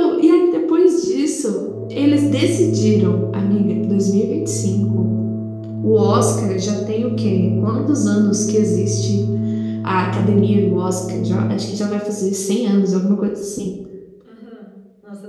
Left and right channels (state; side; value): identical; both; correlation 1.00